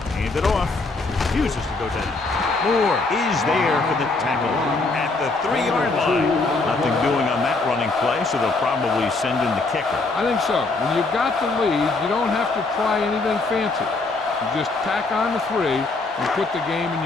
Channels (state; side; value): quieter; right; 3.5 dB